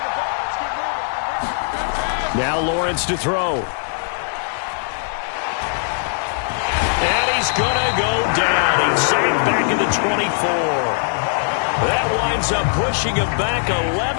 Now Lawrence to throw. And he's going to go down. He's sacked back in the 24. That winds up pushing him back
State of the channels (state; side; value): silent; right; digital silence